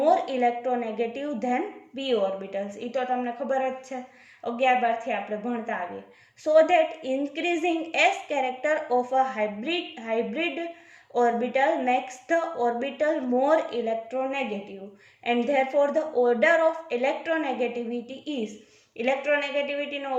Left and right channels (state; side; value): identical; both; correlation 1.00